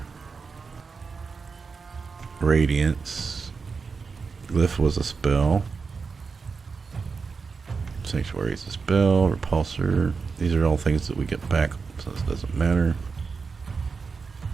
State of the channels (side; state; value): left; quieter; 5.0 dB